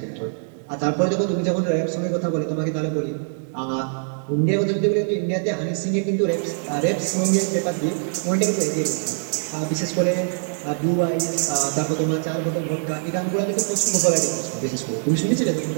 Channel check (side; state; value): left; silent; 59 dB below the other